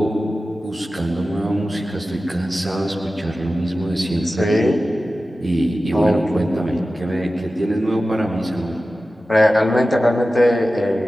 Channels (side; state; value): both; normal; correlation 0.95